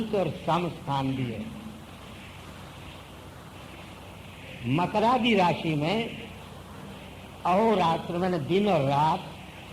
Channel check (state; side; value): identical; both; correlation 1.00